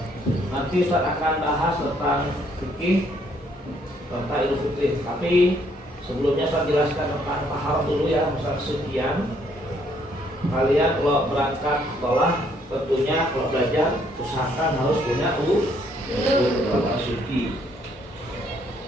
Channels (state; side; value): normal; both; correlation 0.68